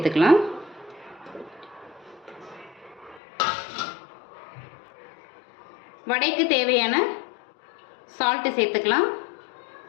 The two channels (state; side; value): drops out; right; at 3.2 s